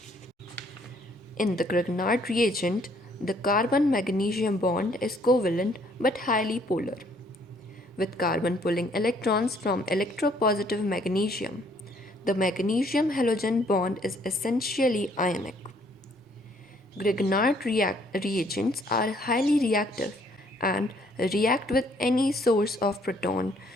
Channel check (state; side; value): normal; both; correlation 0.64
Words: In the Grignard reagent, the carbon-magnesium bond is covalent but highly polar, with carbon pulling electrons from electropositive magnesium. The magnesium halogen bond is essentially ionic. Grignard reagents are highly reactive and react with any source of proton